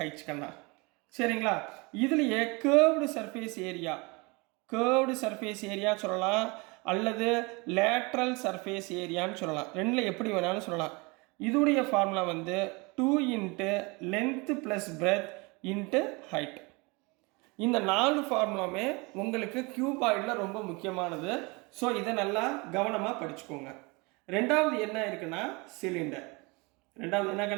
கண்ணா, சரிங்களா? இதுலேயே கேர்வ்டு சர்ஃபேஸ் ஏரியா சொல்லலாம், அல்லது லேட்ரல் சர்ஃபேஸ் ஏரியான்னு சொல்லலாம். ரெண்டில் எப்படி வேணாலும் சொல்லலாம். இதோடைய ஃபார்முலா வந்து 2 into length plus breadth into height. இந்த 4 ஃபார்முலாமே உங்களுக்கு கியூபாய்டில் ரொம்ப முக்கியமானது. ஸோ இதை நல்லா கவனமாக படிச்சுக்கோங்க. ரெண்டாவது என்ன இருக்குன்னா சிலிண்டர். ரெண்டாவது என்ன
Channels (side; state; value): left; quieter; 27.2 dB